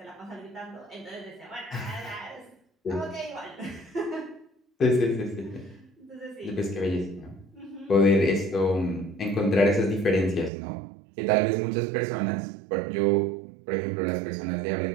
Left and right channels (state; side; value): drops out; left; at 10.5 s